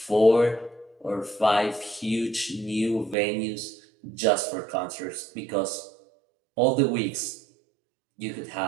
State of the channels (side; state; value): left; drops out; at 3.2 s